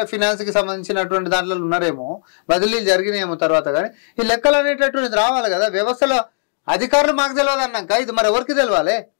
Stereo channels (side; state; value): right; silent; digital silence